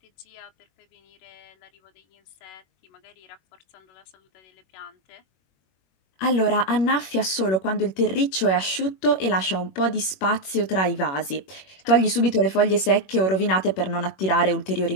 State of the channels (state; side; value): late; right; 21 ms